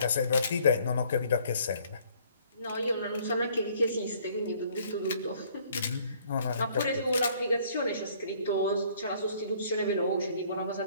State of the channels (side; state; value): both; inverted; correlation -0.60